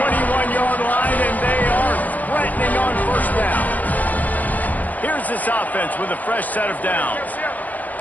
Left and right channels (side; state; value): right; late; 0.079 ms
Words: line, and they are threatening on first down. Here's this offense with a fresh set of downs.